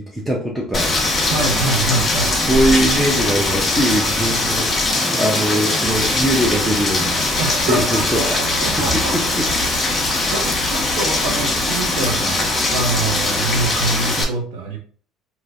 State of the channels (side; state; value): both; normal; correlation 0.59